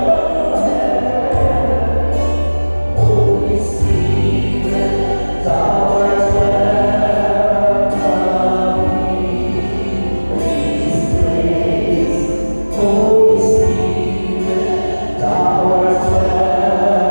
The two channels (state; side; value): inverted; both; correlation -1.00